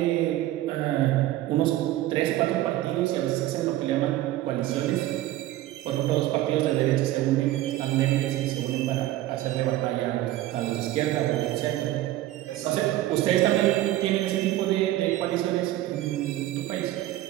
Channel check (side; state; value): left; quieter; 15.1 dB